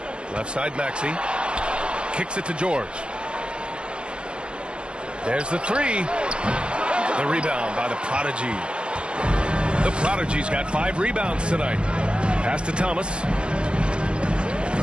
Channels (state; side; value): late; left; 0.055 ms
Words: Left side Maxey. Kicks it to George. There's the 3. The rebound by the prodigy. The Prodigy's got 5 rebounds tonight. Pass to Thomas.